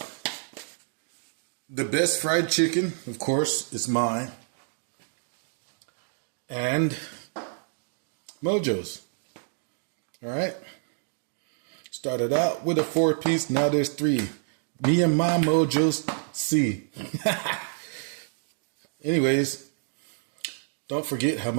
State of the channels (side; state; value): left; silent; digital silence